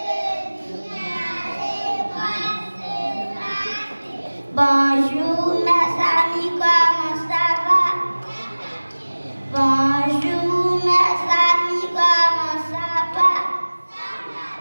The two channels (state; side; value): inverted; both; correlation -1.00